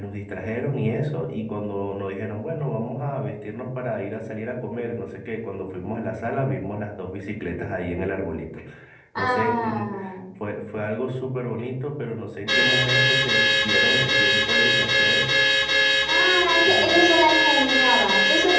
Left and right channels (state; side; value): identical; both; correlation 1.00